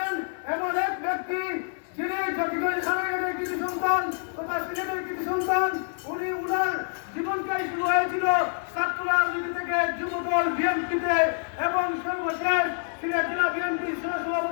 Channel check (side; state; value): right; silent; 56 dB below the other